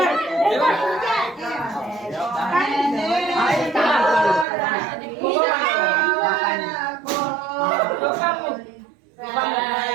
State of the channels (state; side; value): drops out; left; at 4.5 s